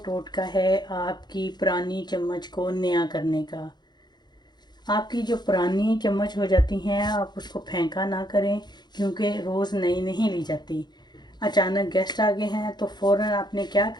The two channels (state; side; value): late; right; 0.21 ms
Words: टोटका है आपकी पुरानी चम्मच को नया करने का। आपकी जो पुरानी चम्मच हो जाती हैं आप उसको फेंका ना करें, क्योंकि रोज़ नई नहीं ली जाती। अचानक गेस्ट आ गए हैं तो फ़ौरन आपने क्या